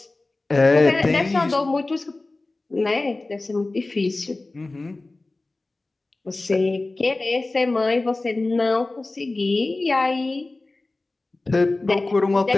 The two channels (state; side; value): quieter; right; 3.1 dB